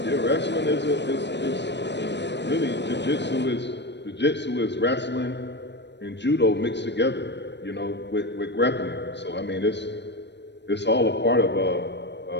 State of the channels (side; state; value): right; late; 0.51 ms